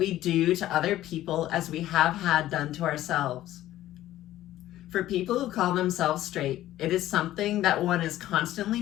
do to other people as we have had done to ourselves. For people who call themselves straight, it is something that one is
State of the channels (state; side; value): quieter; right; 14.1 dB